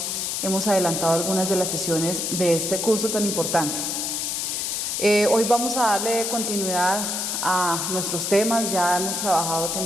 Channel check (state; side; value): noise; left; hiss, 1 dB below the sound